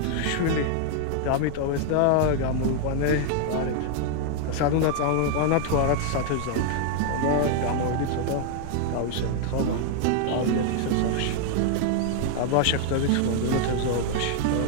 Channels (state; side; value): different; both; correlation 0.00